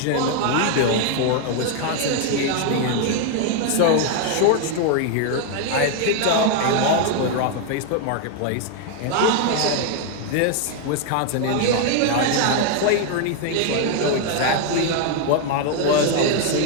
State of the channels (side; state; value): both; different; correlation 0.00